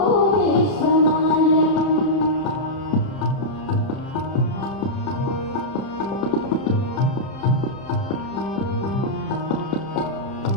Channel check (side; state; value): right; late; 30 ms